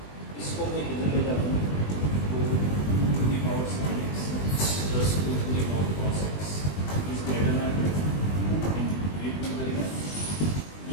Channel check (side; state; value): right; late; 20 ms